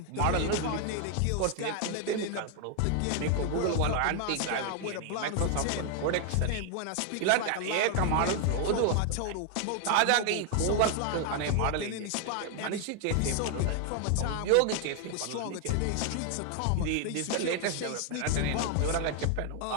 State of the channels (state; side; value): different; both; correlation 0.00